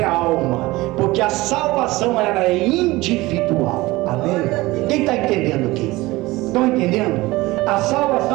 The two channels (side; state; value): left; quieter; 20.1 dB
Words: alma, porque a salvação ela é individual. Amém? Quem está entendendo aqui? Estão entendendo? A